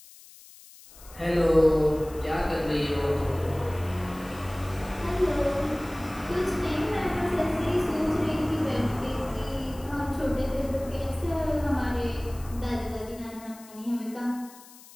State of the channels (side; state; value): left; noise; hiss, 21 dB below the sound